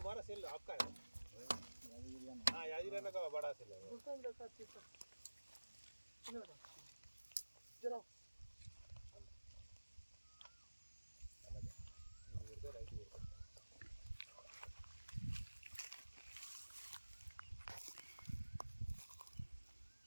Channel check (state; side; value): inverted; both; correlation -1.00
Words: सेल आपका है? हाँ याद ही रहना का बड़ा सेल है. जरा